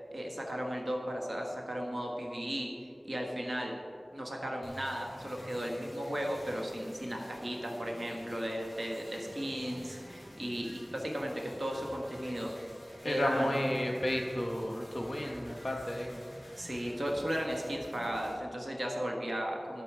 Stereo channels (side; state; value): both; normal; correlation 0.97